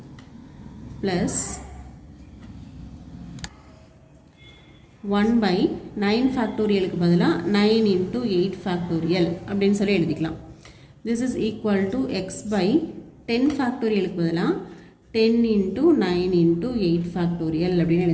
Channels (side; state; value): both; identical; correlation 1.00